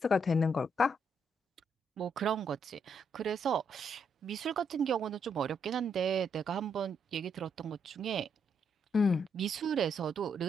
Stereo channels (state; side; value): normal; both; correlation 0.76